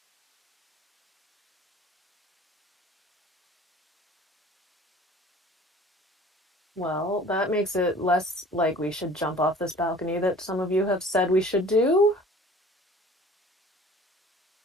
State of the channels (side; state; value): both; normal; correlation 0.48